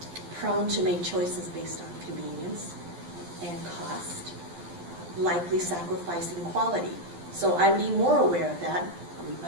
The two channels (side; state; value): left; late; 12 ms